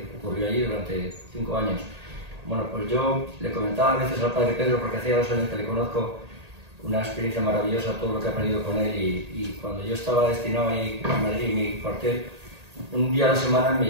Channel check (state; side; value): late; left; 1.8 ms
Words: ocurrió allí durante 5 años. Bueno, pues yo le comentaba a veces al padre Pedro, porque hacía 2 años que le conozco, una experiencia maravillosa, todo lo que he aprendido con él, y cuando yo estaba destinado ahí en Madrid, en mi cuartel, un día a la semana me